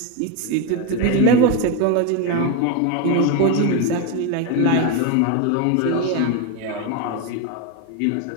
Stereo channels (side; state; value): both; different; correlation 0.03